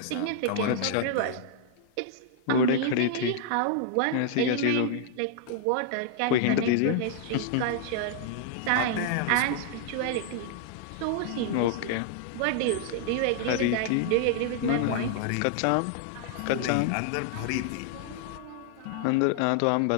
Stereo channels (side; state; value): both; different; correlation -0.01